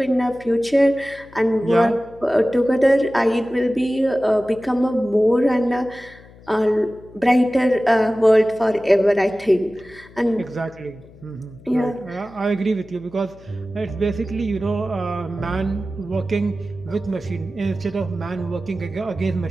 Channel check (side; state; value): left; noise; hum, 23 dB below the sound